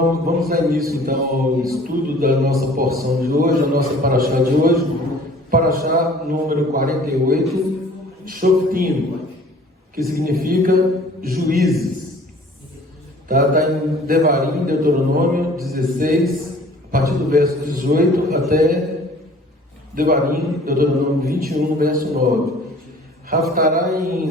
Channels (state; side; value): normal; both; correlation 0.51